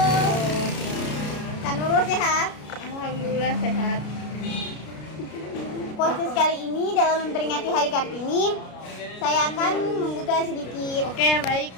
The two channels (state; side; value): late; right; 33 ms